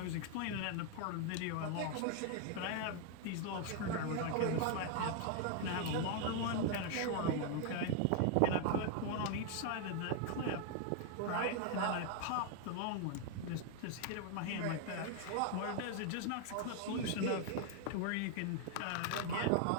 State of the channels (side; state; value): both; different; correlation 0.00